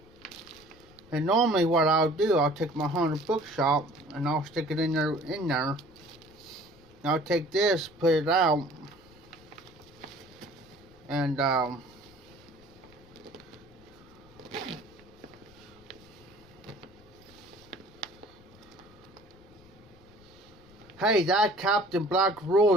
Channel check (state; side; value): noise; left; rumble, 25 dB below the sound